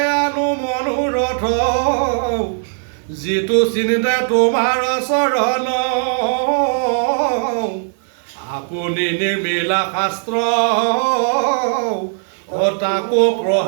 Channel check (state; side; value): silent; left; 59 dB below the other